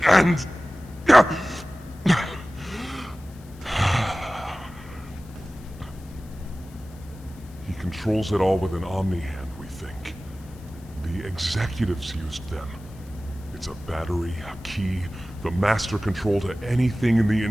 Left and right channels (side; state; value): left; noise; hiss, 26 dB below the sound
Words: and... He controls it all with an omni-hand, we think. The executives used them. It's a battery, a key, the master control to anything in the